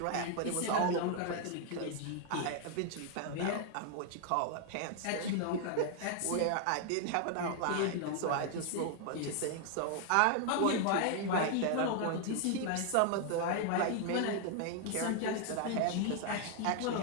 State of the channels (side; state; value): both; different; correlation 0.00